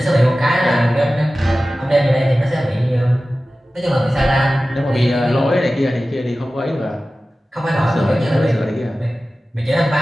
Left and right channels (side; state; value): both; normal; correlation 0.96